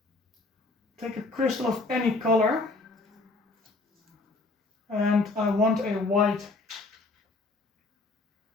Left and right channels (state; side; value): quieter; right; 3.4 dB